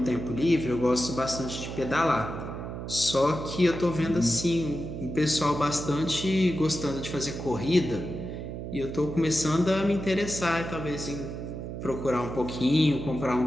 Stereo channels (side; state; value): right; noise; hum, 7 dB below the sound